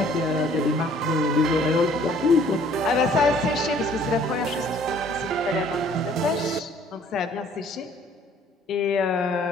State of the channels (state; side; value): normal; both; correlation 0.57